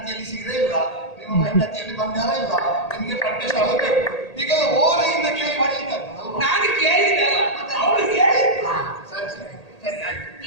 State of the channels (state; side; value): late; right; 1.8 ms